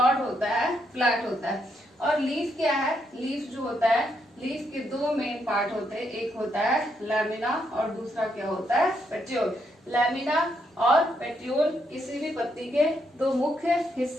होता है, फ्लैट होता है। और लीफ क्या है? लीफ जो होता है, लीफ के दो मेन पार्ट होते हैं, एक होता है लैमिना और दूसरा क्या होता है? पेट्यूल। लैमिना और पेट्यूल किसी भी पत्ती के दो मुख्य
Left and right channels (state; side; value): normal; both; correlation 0.77